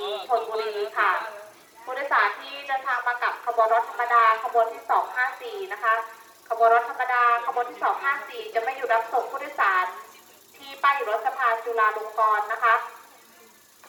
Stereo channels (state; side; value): identical; both; correlation 1.00